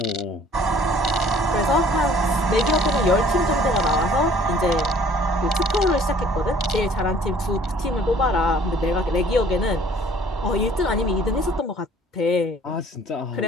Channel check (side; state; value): both; normal; correlation 0.55